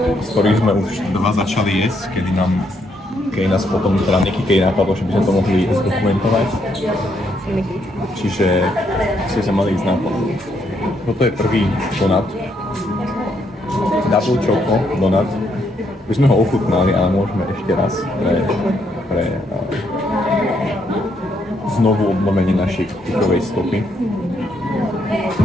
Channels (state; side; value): normal; both; correlation 0.75